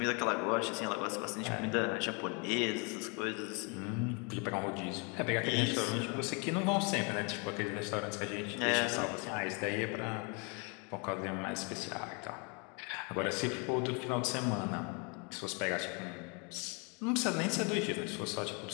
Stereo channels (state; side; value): quieter; right; 33.8 dB